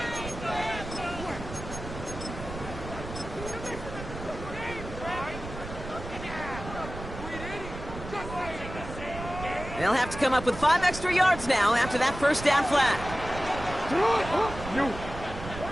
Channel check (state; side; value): noise; right; rumble, 10 dB below the sound